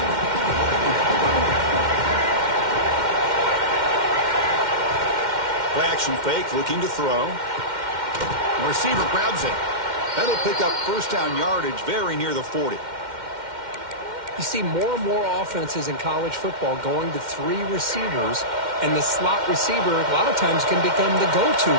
Play action fake, looking to throw. The receiver grabs it. That'll pick up first down yardage very near the 40. You see more and more offenses in college football going to three receivers, and the slot receiver a lot of times can become the go-to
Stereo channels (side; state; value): left; late; 2.1 ms